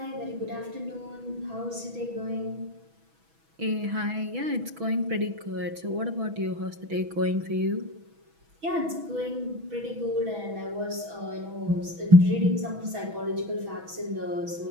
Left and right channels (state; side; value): late; left; 6.1 ms